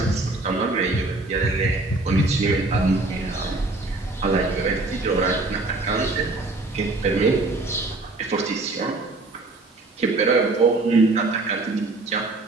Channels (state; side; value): quieter; left; 3.2 dB